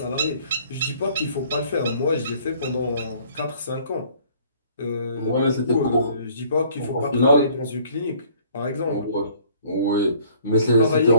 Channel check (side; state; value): both; inverted; correlation -0.57